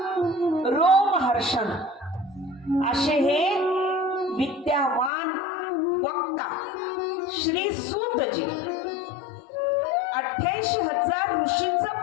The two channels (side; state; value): right; drops out; at 5.1 s